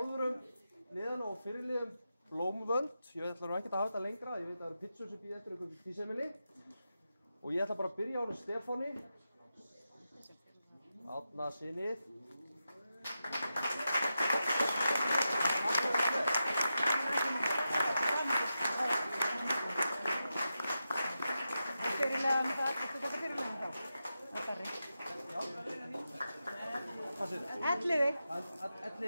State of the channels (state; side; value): inverted; both; correlation -0.89